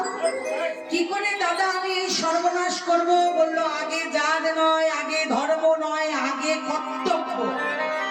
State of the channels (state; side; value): identical; both; correlation 1.00